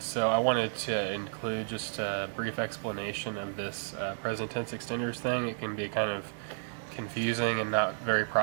so I wanted to include just a brief explanation of this present tense extenders thing. It can be kind of confusing and not very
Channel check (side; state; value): left; silent; 56 dB below the other